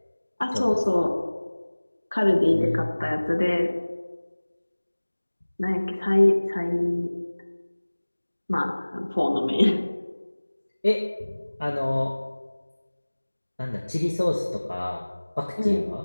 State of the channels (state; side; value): inverted; both; correlation -1.00